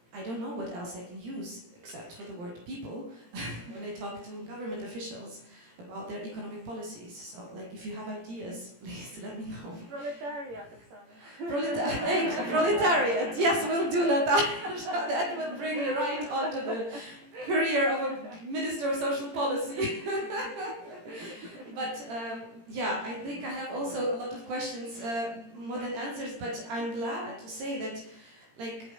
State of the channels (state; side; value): late; left; 17 ms